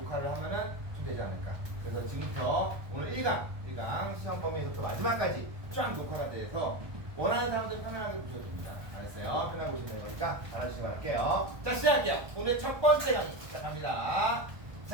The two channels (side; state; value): left; late; 1.2 ms